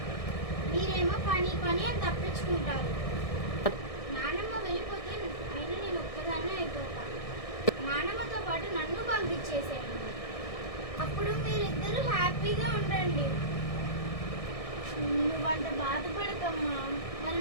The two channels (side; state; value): right; late; 1.6 ms